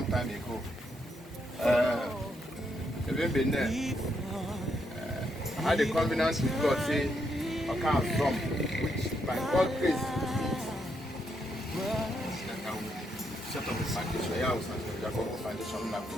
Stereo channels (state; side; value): normal; both; correlation 0.78